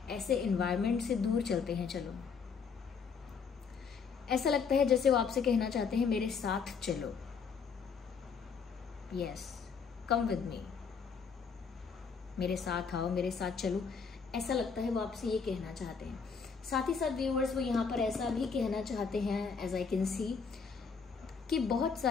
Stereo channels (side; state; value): right; quieter; 5.7 dB